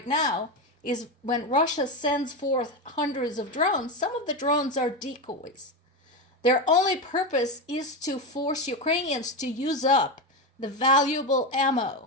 now is when Russia sends forth hundreds of drones, some of the drones are decoys. Their only purpose is to force Ukrainians to use up the valuable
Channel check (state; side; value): normal; both; correlation 0.14